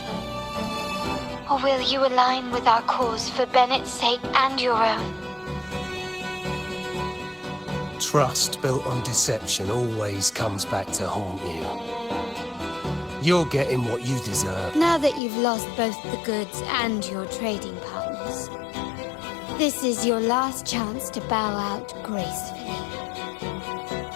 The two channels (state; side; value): drops out; right; at 15.2 s